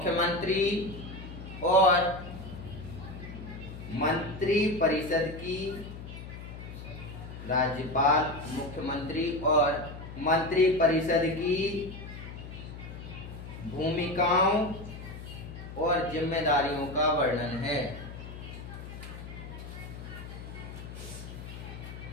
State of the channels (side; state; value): left; noise; hum, 11 dB below the sound